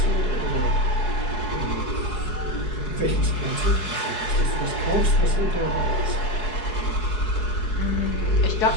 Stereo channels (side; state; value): right; late; 4.7 ms